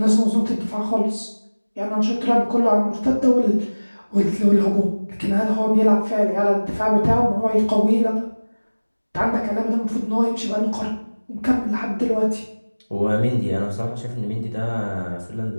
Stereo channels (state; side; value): inverted; both; correlation -1.00